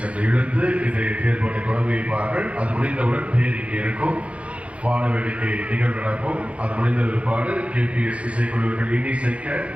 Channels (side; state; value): left; late; 0.062 ms